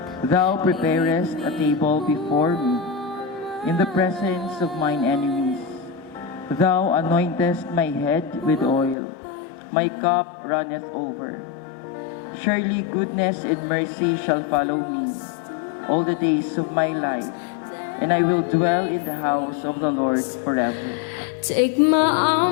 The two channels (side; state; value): right; drops out; at 9.0 s